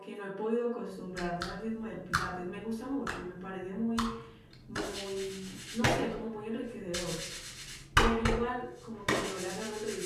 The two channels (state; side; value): identical; both; correlation 1.00